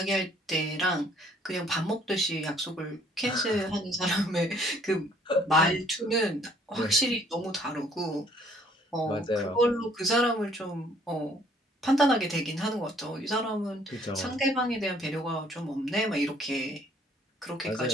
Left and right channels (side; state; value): both; normal; correlation 0.61